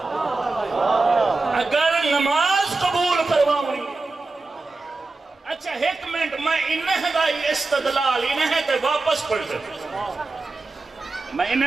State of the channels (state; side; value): quieter; left; 3.6 dB